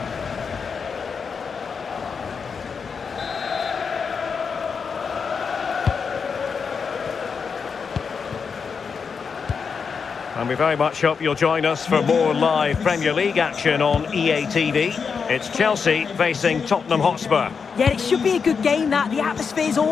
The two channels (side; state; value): right; quieter; 5.8 dB